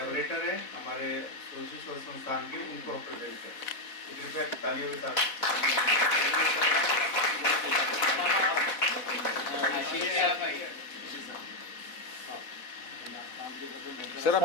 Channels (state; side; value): late; right; 4.2 ms